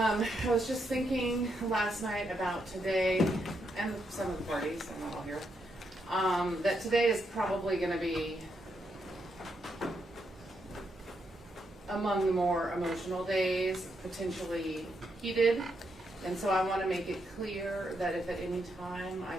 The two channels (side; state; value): both; normal; correlation 0.80